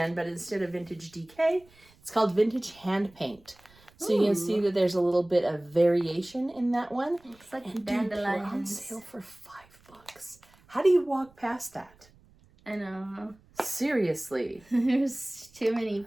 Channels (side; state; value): right; noise; rumble, 29 dB below the sound